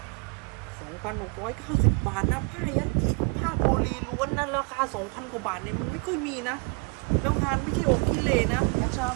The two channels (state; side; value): quieter; left; 33.7 dB